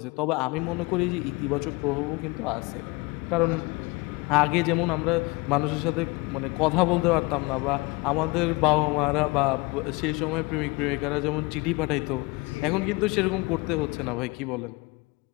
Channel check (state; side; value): quieter; right; 25.3 dB